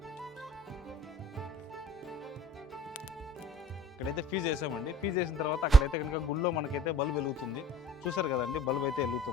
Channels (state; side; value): normal; both; correlation 0.51